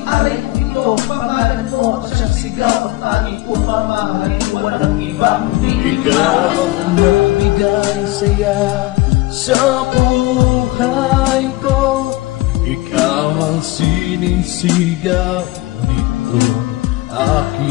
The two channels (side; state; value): right; quieter; 19.2 dB